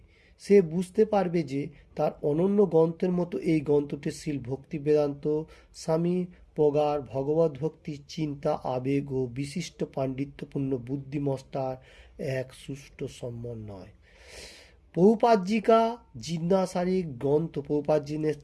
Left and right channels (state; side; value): identical; both; correlation 1.00